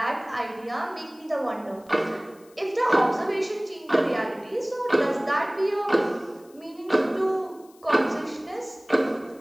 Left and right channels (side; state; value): left; noise; hiss, 28 dB below the sound